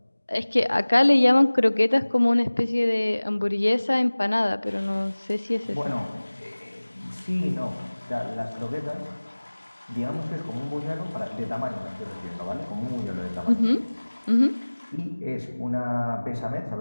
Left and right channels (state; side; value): inverted; both; correlation -1.00